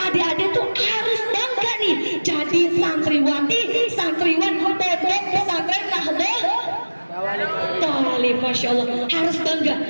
tuh harus bangga nih jadi santriwati, santriwan pondok pesantren Nahdlatul Thalib. Masya Allah, harus bangga.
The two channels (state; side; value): inverted; both; correlation -1.00